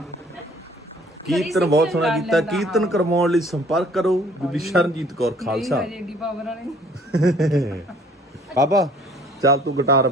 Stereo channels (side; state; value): both; normal; correlation 0.56